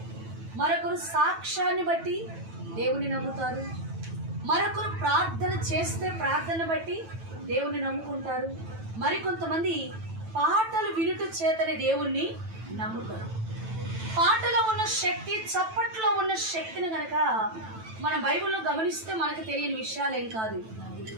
మరొకరు సాక్ష్యాన్ని బట్టి దేవుని నమ్ముతారు, మరొకరు ప్రార్థన చేస్తే ప్రార్థన బట్టి దేవుని నమ్ముకుంటారు, మరికొంతమంది పాటలు వినుట చేతనే దేవుణ్ణి నమ్ముతారు. పాటలో ఉన్న శక్తి, చప్పట్లో ఉన్న శక్తిని గనక మన బైబిల్లో గమనిస్తే మనకు తెలియని విషయాలేం కాదు.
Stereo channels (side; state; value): left; late; 9.1 ms